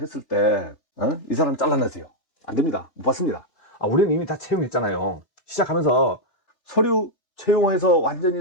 때 이 사람 잘라내세요. 안 됩니다. 못 받습니다. 우리는 이미 다 채용했잖아요. 시작하면서 서류 채용해서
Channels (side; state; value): right; late; 3.4 ms